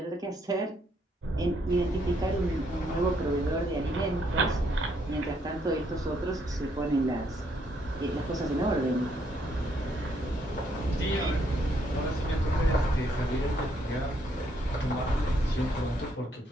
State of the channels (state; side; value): normal; both; correlation 0.71